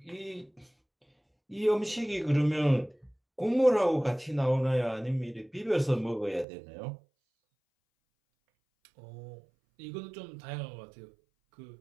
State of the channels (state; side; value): drops out; left; at 6.5 s